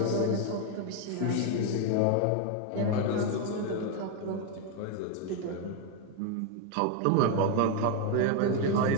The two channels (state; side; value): different; both; correlation 0.01